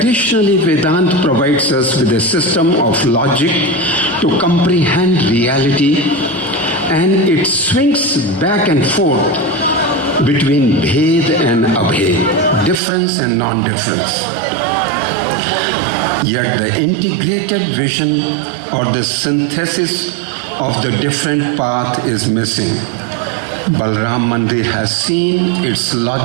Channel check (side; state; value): left; drops out; at 12.8 s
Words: Vedanta provides us with a system of logic to comprehend reality, and it swings back and forth between Bhed and Abhed, difference and non-difference. Yet the integrated vision or the synthesis of the different path is missing. Balaram Mandir has seen its